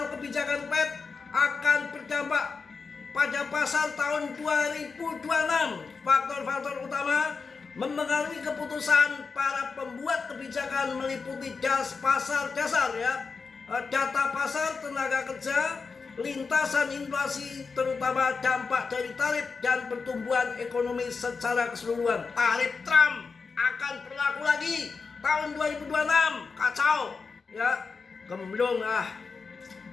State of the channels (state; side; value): quieter; right; 4.8 dB